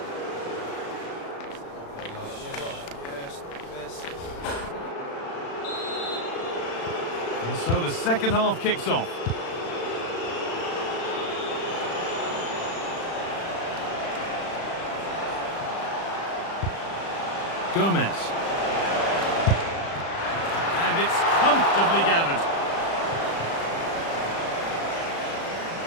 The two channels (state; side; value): late; right; 36 ms